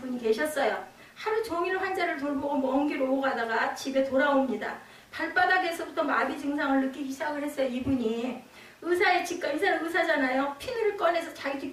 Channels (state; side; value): identical; both; correlation 1.00